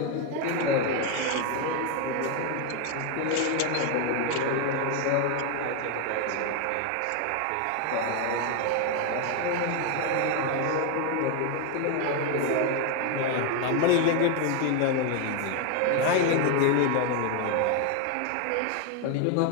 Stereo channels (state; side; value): different; both; correlation 0.01